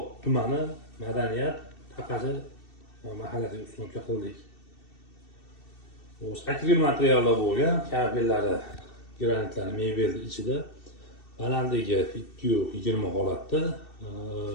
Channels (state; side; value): late; right; 2.7 ms